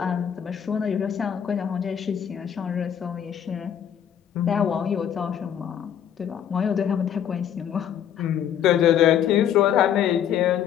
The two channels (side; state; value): right; quieter; 9.3 dB